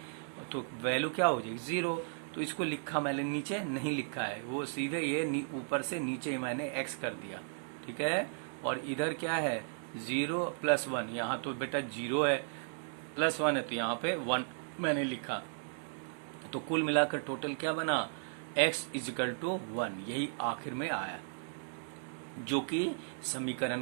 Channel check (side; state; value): left; silent; digital silence